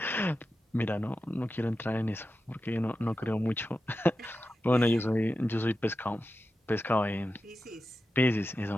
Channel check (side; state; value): both; normal; correlation 0.91